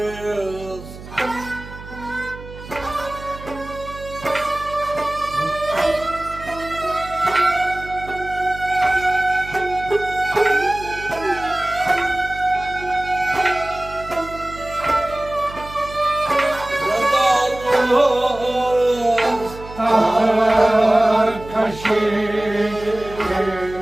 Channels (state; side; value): noise; right; hum, 15 dB below the sound